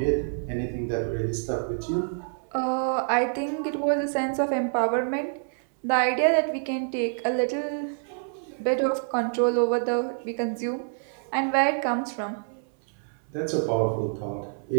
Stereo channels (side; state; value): left; silent; 60 dB below the other